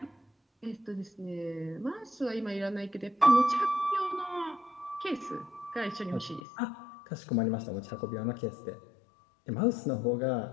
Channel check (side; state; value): right; drops out; at 6.4 s